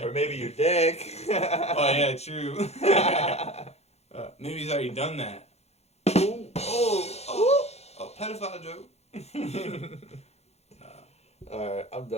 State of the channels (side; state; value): right; late; 0.31 ms